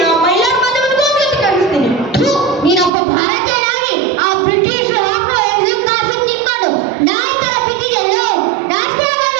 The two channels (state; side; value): drops out; left; at 2.9 s